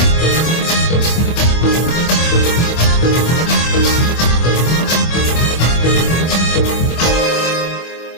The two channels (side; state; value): right; late; 25 ms